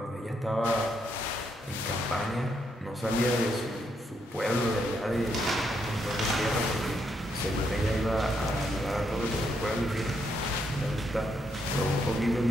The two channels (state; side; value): normal; both; correlation 0.77